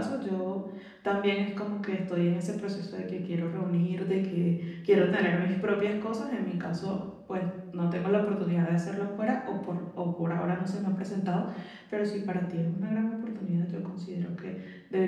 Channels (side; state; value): both; identical; correlation 1.00